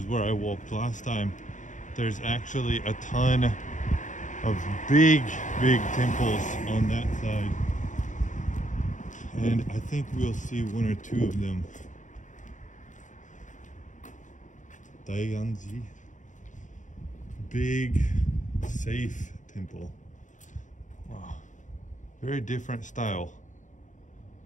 where I walked last time, there's actually a ton of big temples on that side, and I think we'll see one or two of them. Ginzanji, big safe temple. Wow, very different style.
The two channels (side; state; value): right; late; 0.36 ms